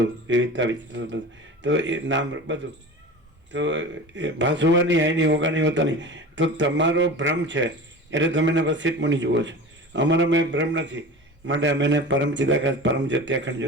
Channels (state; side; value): normal; both; correlation 0.34